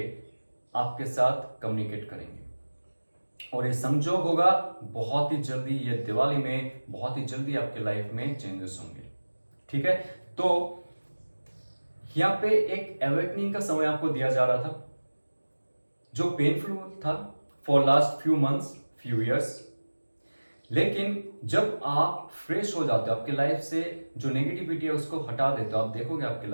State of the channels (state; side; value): inverted; both; correlation -1.00